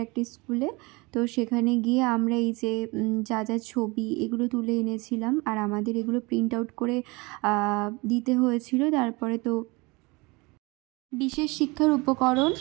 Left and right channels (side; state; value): left; quieter; 25.4 dB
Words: একটা স্কুলে। তো সেখানে গিয়ে আমরা এই যে যা যা ছবি এগুলো তুলে এনেছিলাম, আর আমাদের এগুলো প্রিন্ট আউট করে দিতে হয়েছিল। তারপরে তো বিশেষ শিক্ষার উপকরণ,